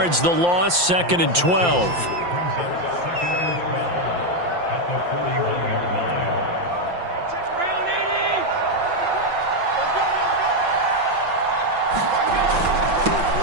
the loss, 2nd and 12.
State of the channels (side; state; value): left; late; 5.8 ms